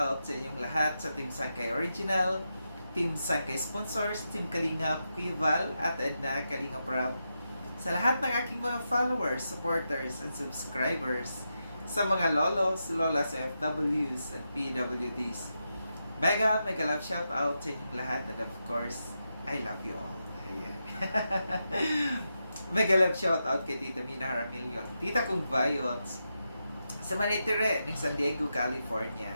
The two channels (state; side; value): inverted; both; correlation -0.87